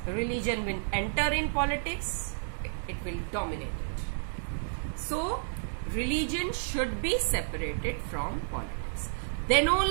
religion will enter in politics, it will dominate it. So, religion should be separated from politics. Then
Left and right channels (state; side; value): silent; left; digital silence